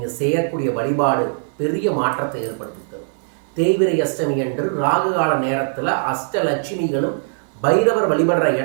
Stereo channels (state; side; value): silent; left; 57 dB below the other